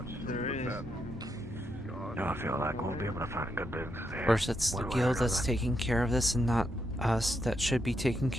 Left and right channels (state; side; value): normal; both; correlation 0.81